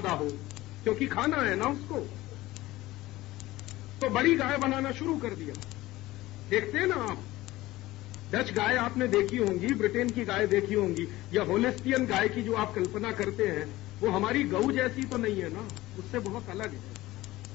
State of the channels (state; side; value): quieter; right; 17.8 dB